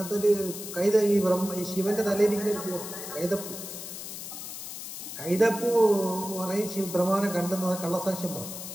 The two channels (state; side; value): noise; left; hiss, 9 dB below the sound